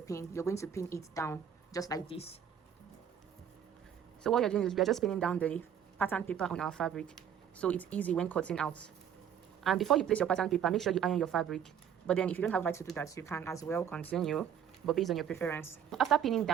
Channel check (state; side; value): quieter; left; 8.8 dB